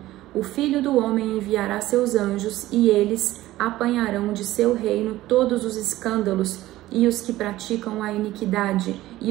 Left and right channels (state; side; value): quieter; left; 16.0 dB